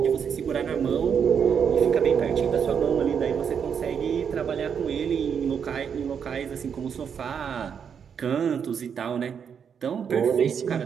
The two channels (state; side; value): quieter; left; 7.3 dB